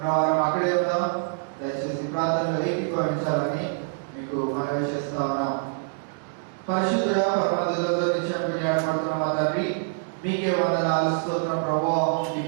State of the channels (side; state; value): left; silent; digital silence